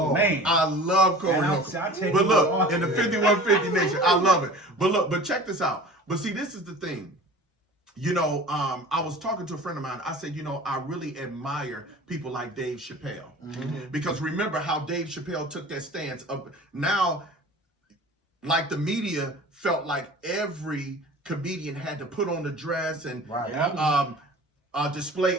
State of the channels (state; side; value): normal; both; correlation 0.40